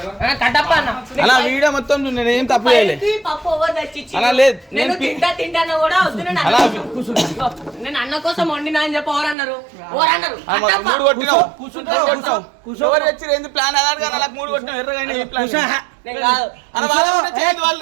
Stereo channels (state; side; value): drops out; left; at 9.3 s